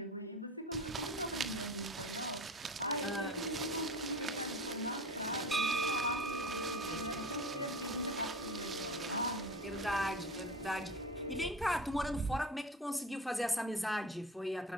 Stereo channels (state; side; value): normal; both; correlation 0.32